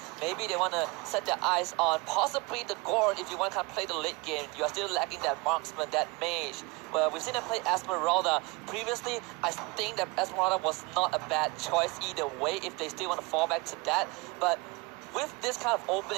Maybe they want to set their eyes on possibly the Gord if you want to kind of play the late game. You are still lacking that marksman, that mage. Well, we've seen them play Esmeralda. Previously, I think that Esmeralda was not a bad choice either way if they still want to fall back to that. But with this kind of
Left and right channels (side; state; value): left; quieter; 25.9 dB